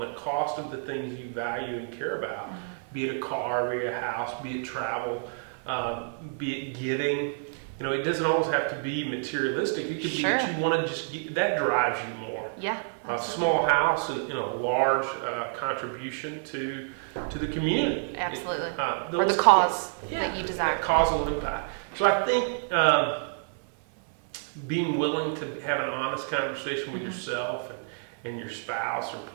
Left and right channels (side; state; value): left; silent; 55 dB below the other